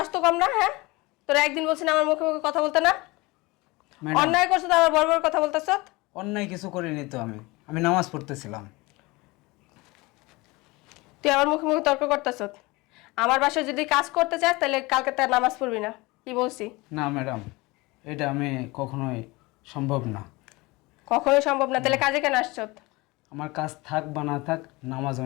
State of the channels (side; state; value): right; quieter; 23.2 dB